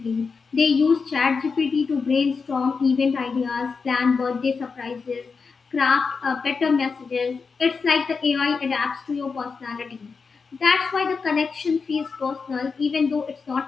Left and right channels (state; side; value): quieter; right; 5.0 dB